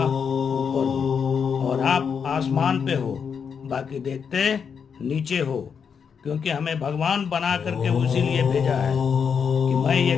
ऊपर हूँ। और आप आसमान पे हो, बाकी देखते नीचे हो। क्योंकि हमें भगवान बना करके उसी लिए भेजा है कि मैं ये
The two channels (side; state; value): right; quieter; 6.6 dB